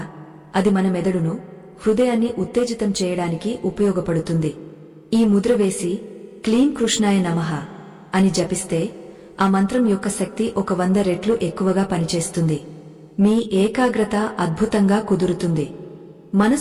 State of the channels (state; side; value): identical; both; correlation 1.00